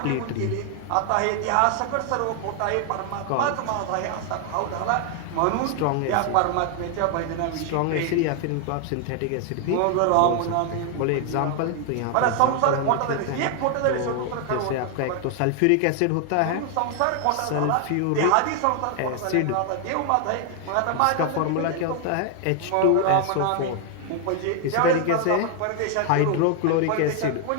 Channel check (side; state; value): both; different; correlation 0.00